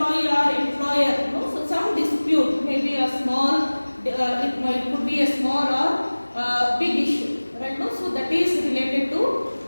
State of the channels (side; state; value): both; inverted; correlation -1.00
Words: or employer, so some dispute, maybe a small, it could be a small or big issue, right now. So that is related to